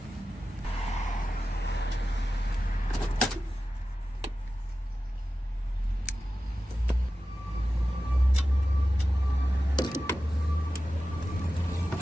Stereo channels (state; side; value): normal; both; correlation 0.93